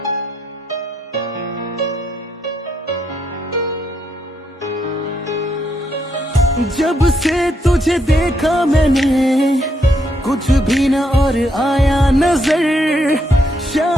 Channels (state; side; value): normal; both; correlation 0.77